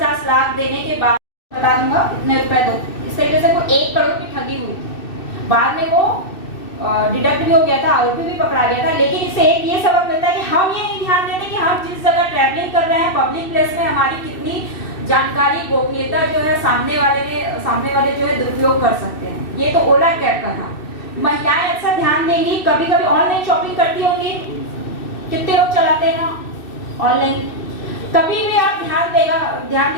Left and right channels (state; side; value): late; right; 2.6 ms